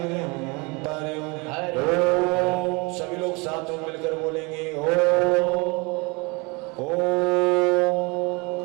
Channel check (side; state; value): left; quieter; 28.2 dB